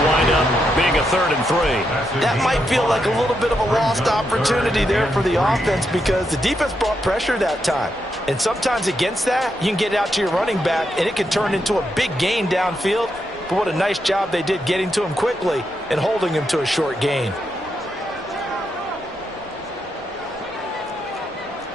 wind up being a 3rd and 3. That might feel like a little bit of a lost opportunity there for the offense because the defense brought pressure that time. And sometimes against that, you can get out to your running back, and it can turn into a big gain downfield. But what a nice job they did getting to him quickly and holding him to a short gain.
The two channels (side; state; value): both; normal; correlation 0.82